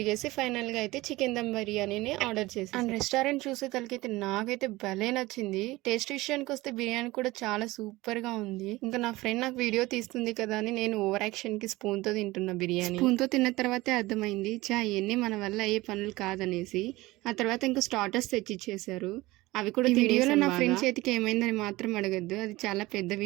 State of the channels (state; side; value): quieter; left; 19.7 dB